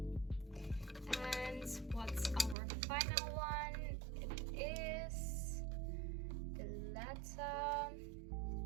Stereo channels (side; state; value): left; drops out; at 2.6 s